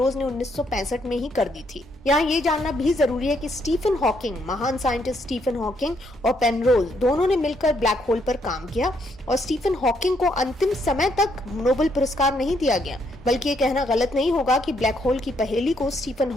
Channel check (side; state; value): both; normal; correlation 0.73